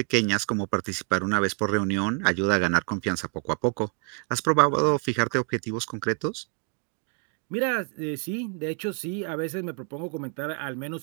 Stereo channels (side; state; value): left; quieter; 38.7 dB